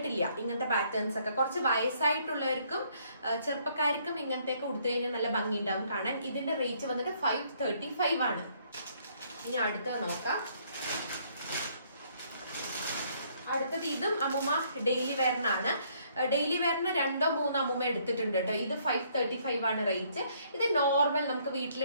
ഇങ്ങനത്തെ പാറ്റേൺസ് ഒക്കെ. കുറച്ച് വയസ്സായിട്ടുള്ളവർക്കും ചെറുപ്പക്കാർക്കും ഇങ്ങനത്തെയൊക്കെ കൊടുത്തു കഴിഞ്ഞാൽ നല്ല ഭംഗി ഉണ്ടാവും കാണാൻ. ഇതിന്റെ റേറ്റ് വന്നിട്ട് 535 ആണ്. ഇനി അടുത്തത് നോക്കാം. അടുത്തത് ഇതും അമ്മൂമ്മ ഡെയിലി വെയറിനാണ്. ഡെയിലി വെയറിന് 2-3 അമ്മൂമ്മ എടുത്തിട്ടുണ്ട് കേട്ടോ. ഇത് 535 ആണ് റേറ്റ്. ഇത് നോർമൽ നമുക്ക്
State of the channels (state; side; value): inverted; both; correlation -0.66